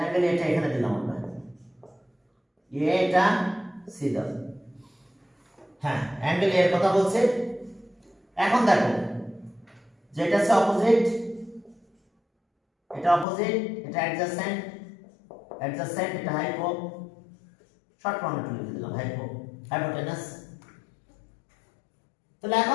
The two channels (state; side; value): drops out; right; at 13.2 s